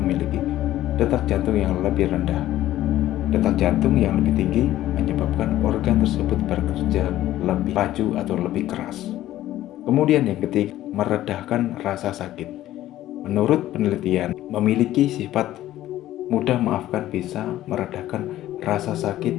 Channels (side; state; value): right; quieter; 14.0 dB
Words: memiliki detak jantung yang lebih rendah. Detak jantung yang lebih tinggi menyebabkan organ tersebut bekerja lebih laju atau lebih keras. Kemudian yang ketiga, meredahkan rasa sakit. Menurut penelitian, memiliki sifat mudah memaafkan bisa meredakan rasa